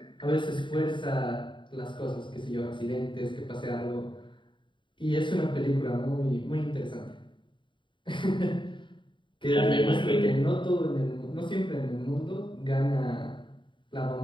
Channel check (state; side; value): late; right; 0.23 ms